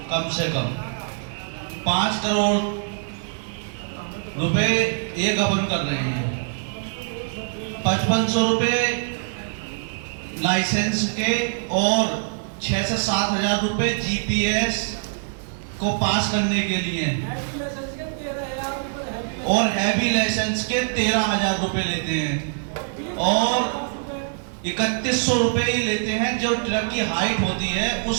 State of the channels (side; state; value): left; silent; digital silence